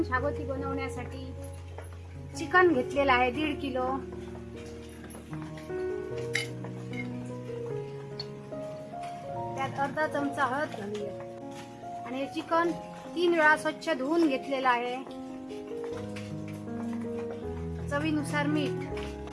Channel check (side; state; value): both; identical; correlation 1.00